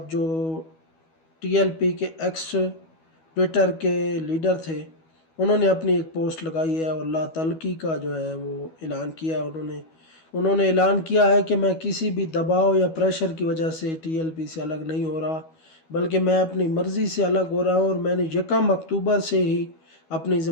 جو ٹی ایل پی کے ایکس ٹویٹر کے لیڈر تھے، انہوں نے اپنی ایک پوسٹ لگائی ہے اور لا تعلقی کا جو ہے وہ اعلان کیا ہے۔ انہوں نے اعلان کیا ہے کہ میں کسی بھی دباؤ یا پریشر کی وجہ سے ٹی ایل پی سے الگ نہیں ہو رہا، بلکہ میں اپنی مرضی سے الگ ہو رہا ہوں، اور میں نے 1 اکتوبر سے ہی اپنی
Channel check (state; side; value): late; right; 12 ms